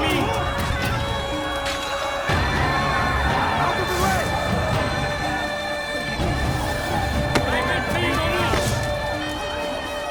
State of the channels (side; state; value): both; identical; correlation 1.00